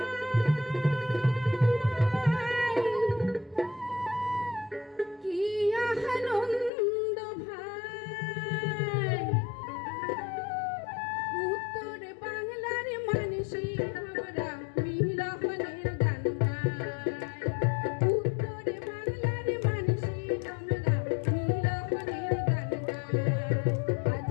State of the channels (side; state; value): right; drops out; at 6.7 s